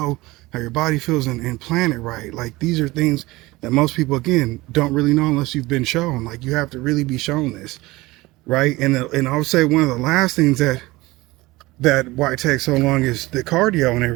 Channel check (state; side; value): quieter; left; 20.4 dB